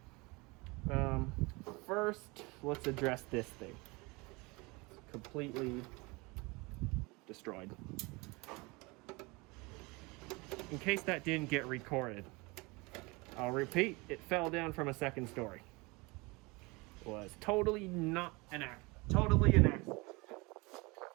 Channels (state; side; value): quieter; left; 25.8 dB